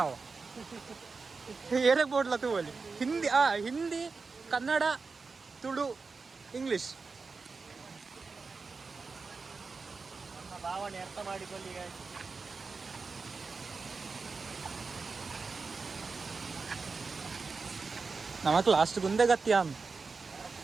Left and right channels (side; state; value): left; quieter; 4.5 dB